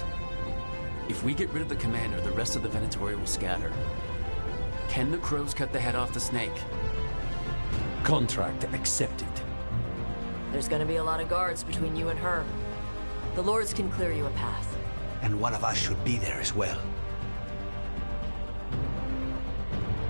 If we get rid of the commander, the rest of the Venatori will scatter. Can the crows cut the head off the snake? Contract accepted. There's gonna be a lot of guards between you and her. The Lords can clear you a path. And one of us should be there as well.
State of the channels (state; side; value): inverted; both; correlation -1.00